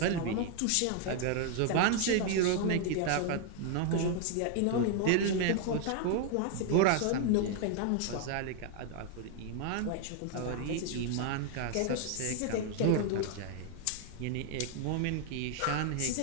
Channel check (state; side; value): different; both; correlation 0.00